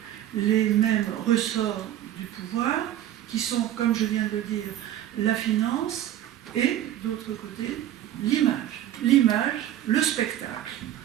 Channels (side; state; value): left; quieter; 12.2 dB